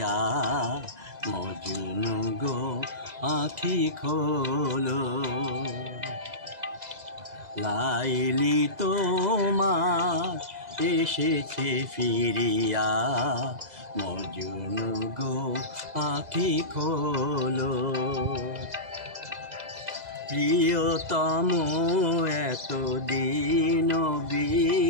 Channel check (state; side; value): late; left; 2.0 ms